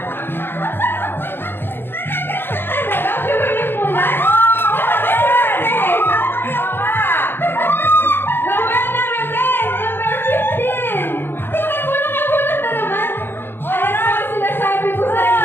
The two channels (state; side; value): late; right; 0.10 ms